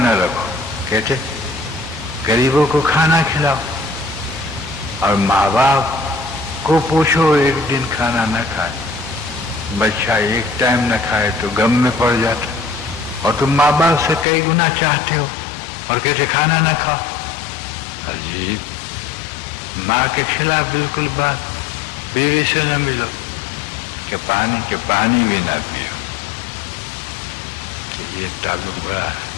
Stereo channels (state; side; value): drops out; right; at 14.2 s